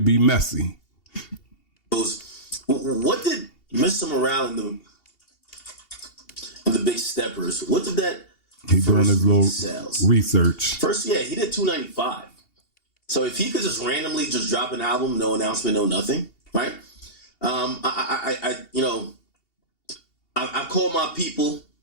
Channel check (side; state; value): right; late; 2.8 ms